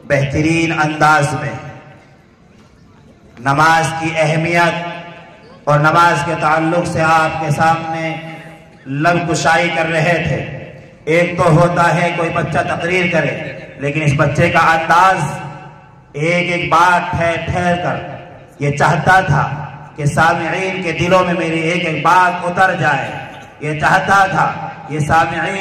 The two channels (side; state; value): both; identical; correlation 1.00